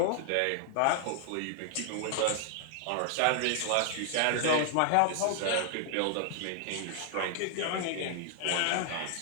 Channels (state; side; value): different; both; correlation 0.00